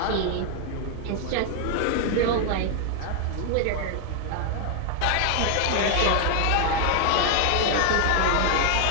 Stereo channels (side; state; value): both; different; correlation 0.00